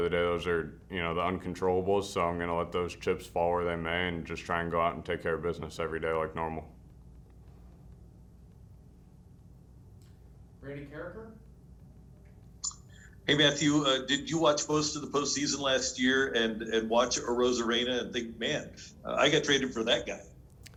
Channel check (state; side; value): identical; both; correlation 1.00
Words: the day, those are, you know, the uncontrollables. So I'm going to let those chips fall where they may and just try and go out and take care of business every day like normal. Randy Carricker. Hey Matthew, did you watch most of the postseason last year and watch Arozarena and think, man, I got traded for that guy?